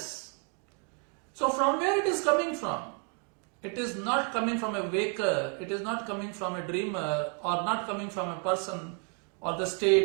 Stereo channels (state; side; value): quieter; left; 35.4 dB